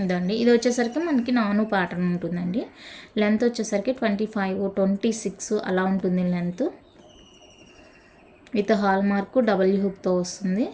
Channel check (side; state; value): both; identical; correlation 1.00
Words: ఇదండి, ఇది వచ్చేసరికి మనకి నాను ప్యాటర్న్ ఉంటుందండి. లెంత్ వచ్చేసరికి 25, 26 అలా ఉంటుంది length. With hallmark double హుక్తో వస్తుంది.